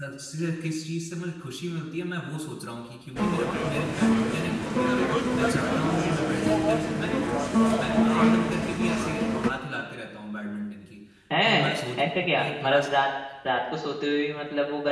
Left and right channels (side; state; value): both; identical; correlation 1.00